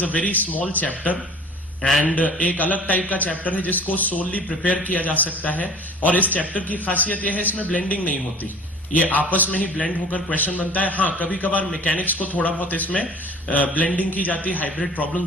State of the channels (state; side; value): normal; both; correlation 0.45